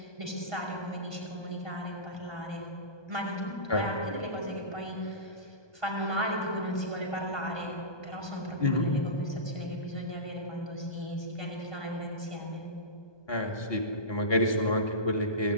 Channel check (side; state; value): right; late; 1.2 ms